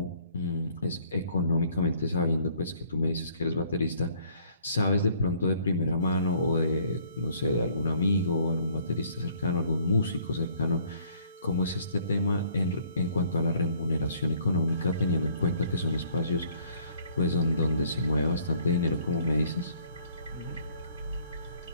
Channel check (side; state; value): both; inverted; correlation -0.61